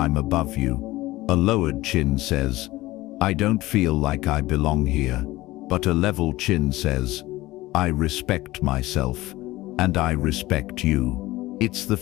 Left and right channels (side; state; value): right; quieter; 18.3 dB